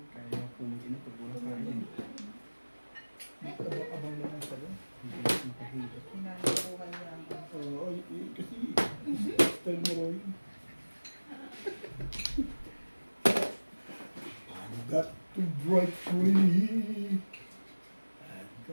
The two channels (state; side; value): inverted; both; correlation -1.00